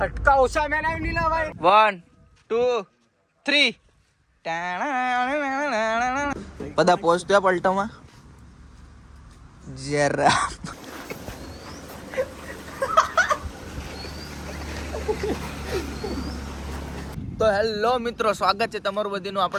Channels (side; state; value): both; identical; correlation 1.00